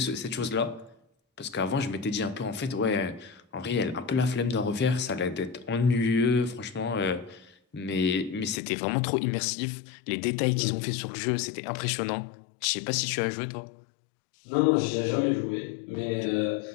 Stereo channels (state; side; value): drops out; right; at 8.6 s